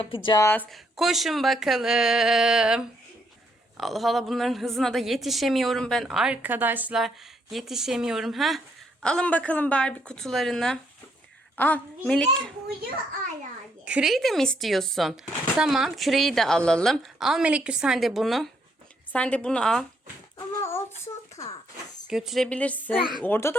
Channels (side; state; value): both; normal; correlation 0.73